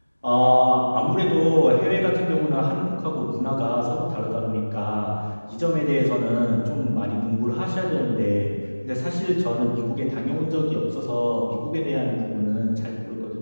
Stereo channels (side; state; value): both; inverted; correlation -1.00